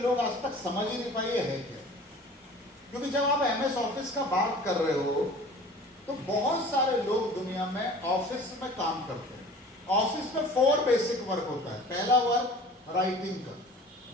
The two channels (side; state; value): both; normal; correlation 0.44